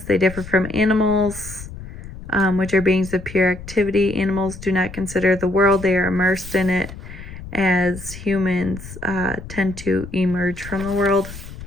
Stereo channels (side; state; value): left; noise; rumble, 13 dB below the sound